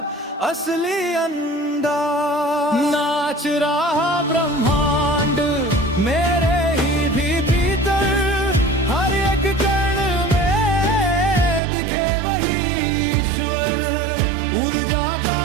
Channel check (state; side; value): drops out; left; at 11.6 s